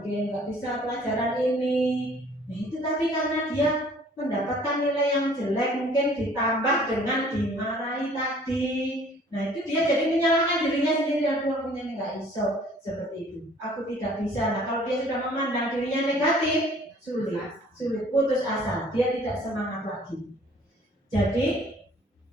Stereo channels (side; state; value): both; normal; correlation 0.55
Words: nggak bisa pelajaran ini. Nah itu tadi karena dia mendapatkan nilai yang jelek, mungkin ditambah dengan dimarahi tadi. Nah itu dia jadi menyalahkan dirinya sendiri, aku punya nggak iso seperti itu, aku tidak bisa. Nah kalau dia sudah memandang dirinya negatif, sulit, putus asa, dia tidak semangat lagi. Jadi